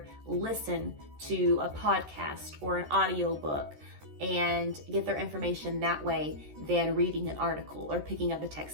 listen to a podcast or an audio book and get their information that way than reading an article or picking up a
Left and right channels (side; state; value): left; late; 13 ms